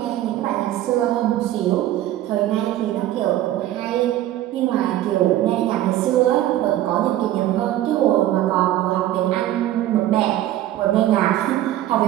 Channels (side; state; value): left; quieter; 13.7 dB